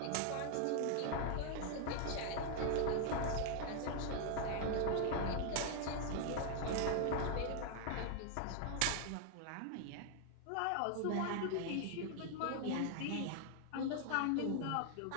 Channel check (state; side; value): different; both; correlation 0.00